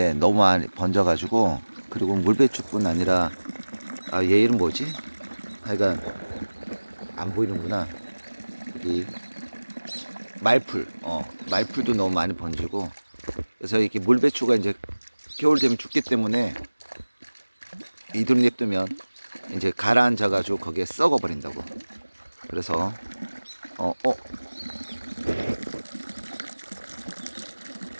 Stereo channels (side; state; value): both; inverted; correlation -1.00